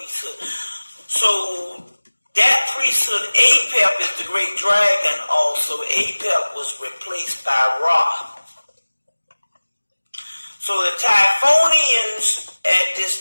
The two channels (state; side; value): inverted; both; correlation -1.00